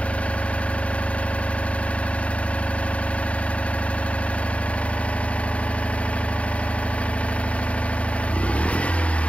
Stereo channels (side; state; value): right; late; 0.064 ms